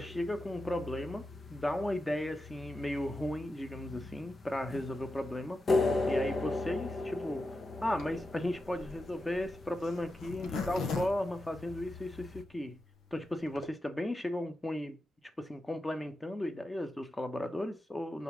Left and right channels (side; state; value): both; normal; correlation 0.89